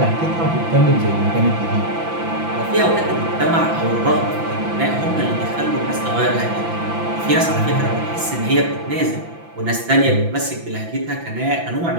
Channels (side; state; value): left; late; 5.9 ms